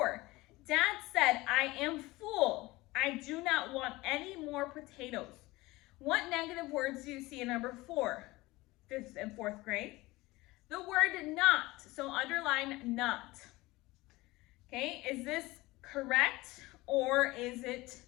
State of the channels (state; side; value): quieter; right; 20.4 dB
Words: Dad said, I am full. I do not want any more potatoes. What negative words do you see in number 4, 5th and 4th grade? The word not, so underline not. Okay, is this correct or is it